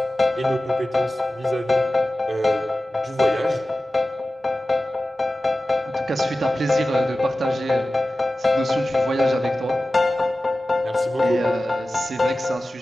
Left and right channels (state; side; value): normal; both; correlation 0.95